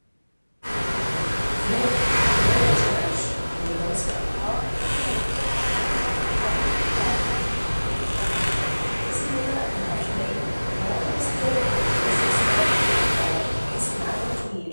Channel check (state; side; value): inverted; both; correlation -1.00